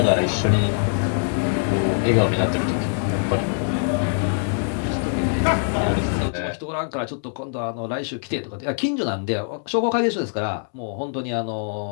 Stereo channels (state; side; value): silent; right; 63 dB below the other